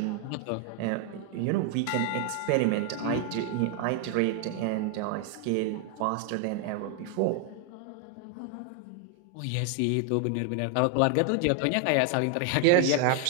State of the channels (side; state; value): both; different; correlation 0.00